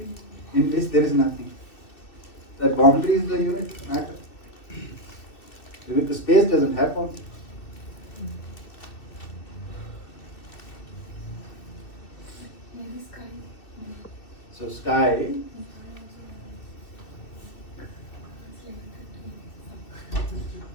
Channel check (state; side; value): late; right; 2.6 ms